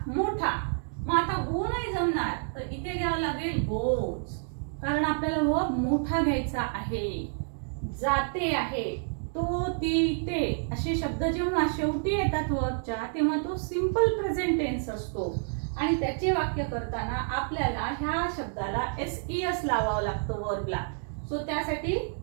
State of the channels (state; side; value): silent; left; digital silence